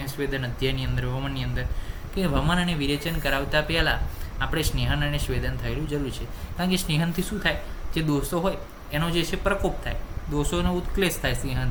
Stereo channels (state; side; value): identical; both; correlation 1.00